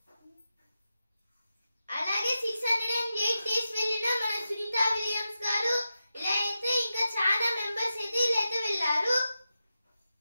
అలాగే 608 డేస్ వెళ్ళిన మన సునీత విలియమ్స్ గారు ఇలా అయితే ఇంకా చాలా మెంబర్స్ అయితే ఇలా అయితే వెళ్ళారు.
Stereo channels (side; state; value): both; inverted; correlation -0.91